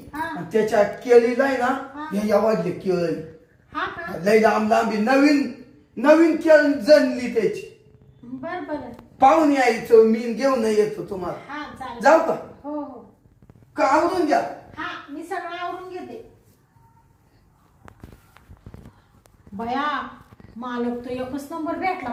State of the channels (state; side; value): identical; both; correlation 1.00